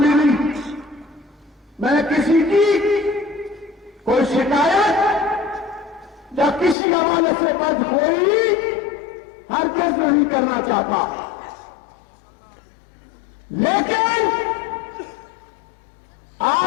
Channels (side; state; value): right; drops out; at 6.8 s